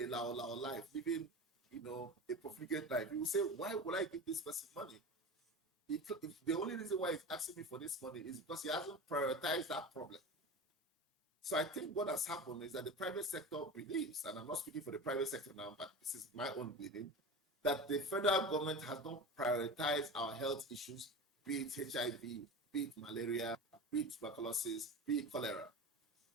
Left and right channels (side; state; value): both; normal; correlation 0.30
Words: lao life, living, a profligate life. You will say, why would I give this person money? The only reason why he's asking me for this money is because he hasn't prioritized that problem. So I think what has happened is that the private sector believes, and I'm not speaking for the private sector now, but this is my own believing, that the federal government has not prioritized our health issues, be it HIV, be it malaria, be it tuberculosis, be it cholera.